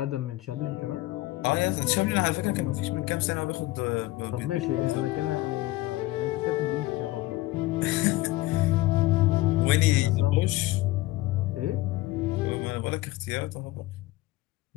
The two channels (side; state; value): right; quieter; 18.3 dB